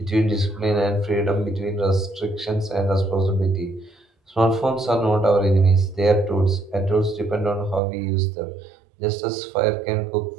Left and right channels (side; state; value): left; drops out; at 7.8 s